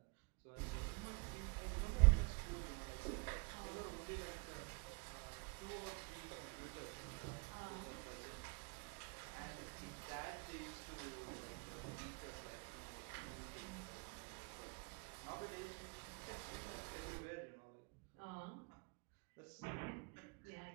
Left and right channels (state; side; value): quieter; left; 32.0 dB